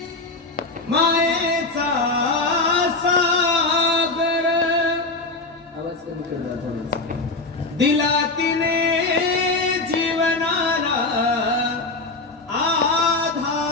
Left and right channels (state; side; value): quieter; right; 3.3 dB